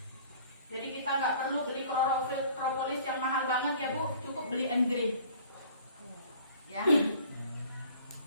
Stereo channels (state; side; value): inverted; both; correlation -0.51